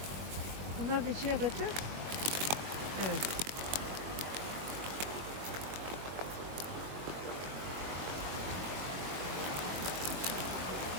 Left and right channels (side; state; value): left; late; 22 ms